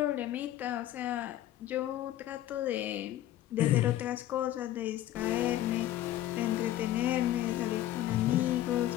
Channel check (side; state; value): right; quieter; 13.5 dB